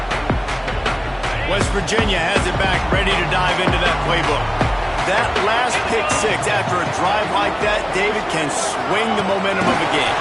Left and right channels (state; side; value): identical; both; correlation 1.00